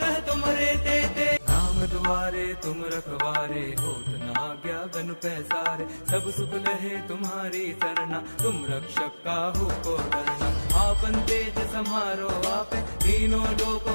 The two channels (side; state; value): both; inverted; correlation -1.00